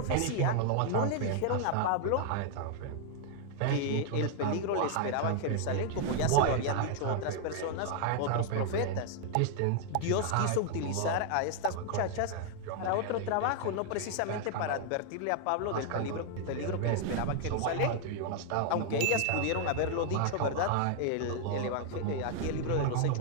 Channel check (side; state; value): both; different; correlation 0.00